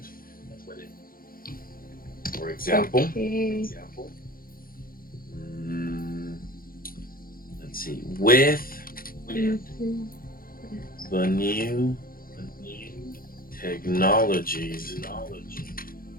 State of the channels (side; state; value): right; late; 0.42 ms